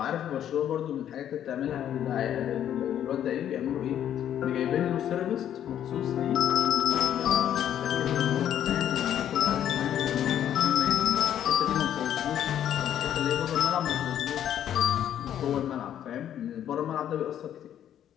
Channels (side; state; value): right; quieter; 10.4 dB